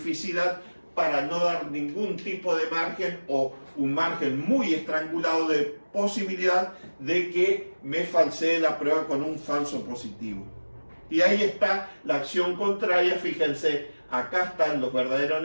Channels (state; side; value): inverted; both; correlation -1.00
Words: para no dar ningún tipo de margen o un margen muy estrangulado de posibilidad de que me falsee la prueba con un falso positivo. Y ahí está la acción contraria, fíjense, acá están los verdaderos